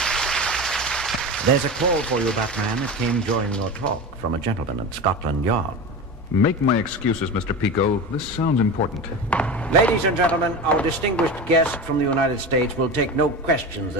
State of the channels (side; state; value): both; normal; correlation 0.26